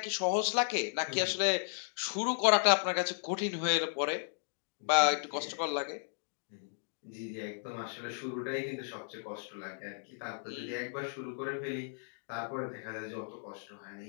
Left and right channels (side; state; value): right; silent; digital silence